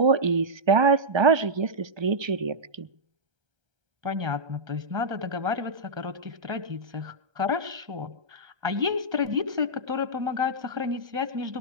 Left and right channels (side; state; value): left; late; 1.3 ms